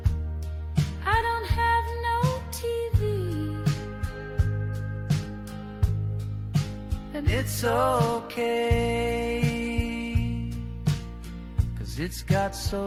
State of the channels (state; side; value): identical; both; correlation 1.00